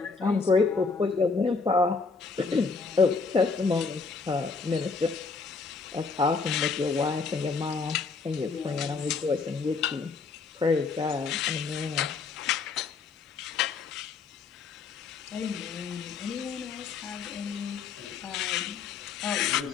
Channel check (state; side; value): quieter; right; 4.7 dB